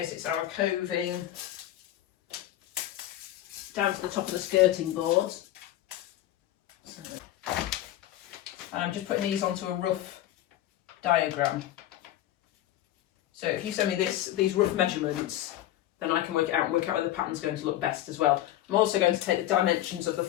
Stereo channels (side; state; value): right; quieter; 13.6 dB